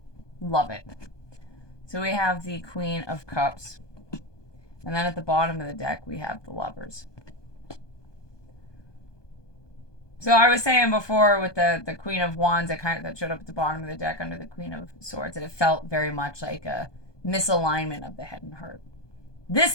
Love it. So we have the Queen of Cups. And then at the bottom of the deck, we have the Lovers. So I was saying before with the Queen of Wands that showed up at the bottom of the deck under the Queen of Swords, that it felt very much like a misalignment of the head and heart. This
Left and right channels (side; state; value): right; late; 1.2 ms